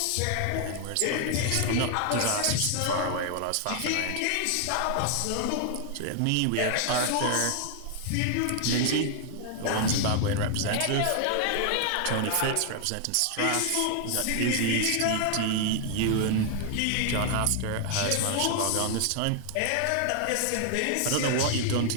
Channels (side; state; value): both; different; correlation 0.00